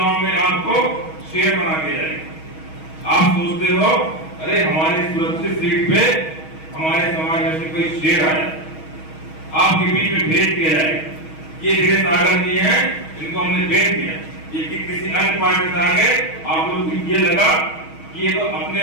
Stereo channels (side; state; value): right; late; 6.3 ms